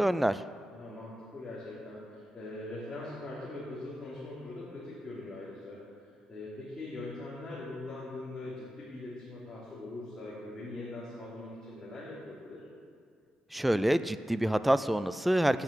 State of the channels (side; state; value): both; normal; correlation 0.94